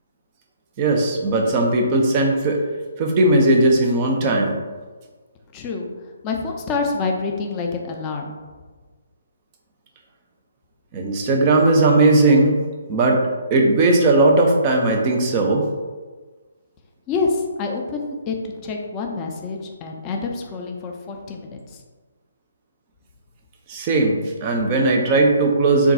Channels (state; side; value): inverted; both; correlation -0.53